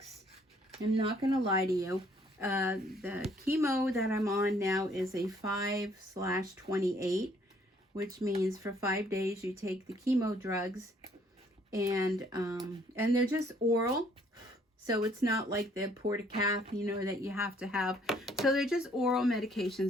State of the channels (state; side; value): normal; both; correlation 0.63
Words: I'm not going to lie to you. The chemo that I'm on now is a 5/28, which means for 5 days you take the chemo drugs, and they're just oral, so it's not like the portacath, you know, that you have to have. So they're just oral